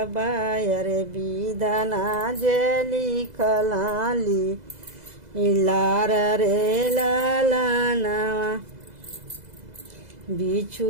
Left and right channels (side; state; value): left; late; 2.0 ms